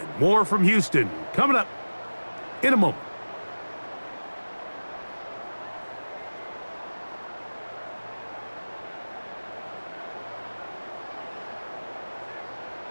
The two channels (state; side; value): inverted; both; correlation -1.00